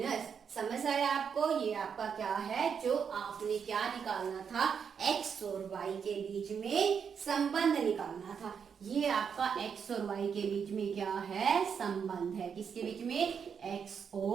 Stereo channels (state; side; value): quieter; left; 6.9 dB